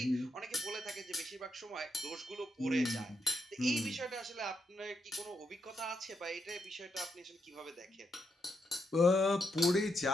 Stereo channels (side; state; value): both; normal; correlation 0.81